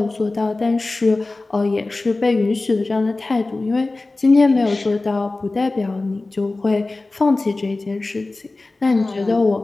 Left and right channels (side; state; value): right; quieter; 3.2 dB